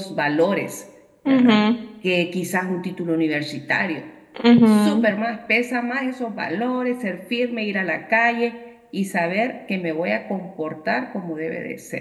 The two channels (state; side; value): identical; both; correlation 1.00